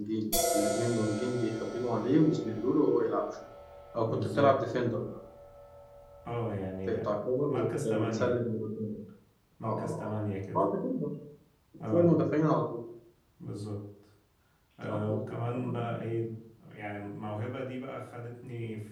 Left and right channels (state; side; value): identical; both; correlation 1.00